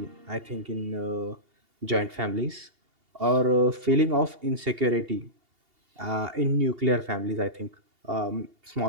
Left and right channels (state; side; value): late; left; 2.8 ms